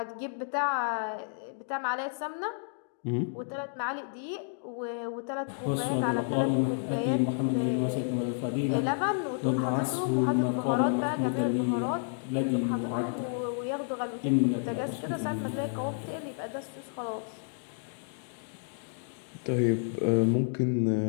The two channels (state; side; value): silent; right; digital silence